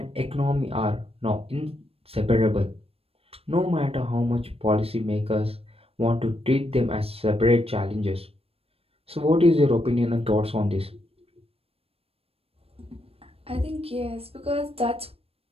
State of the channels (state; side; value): late; left; 0.28 ms